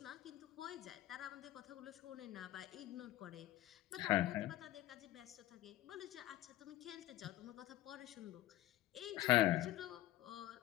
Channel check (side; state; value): right; quieter; 15.2 dB